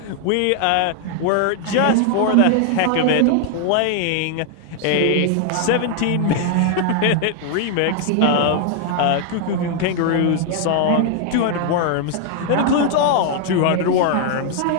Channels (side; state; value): both; different; correlation 0.00